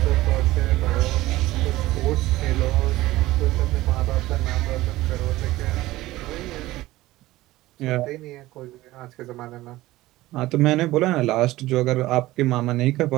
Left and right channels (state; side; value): quieter; left; 17.4 dB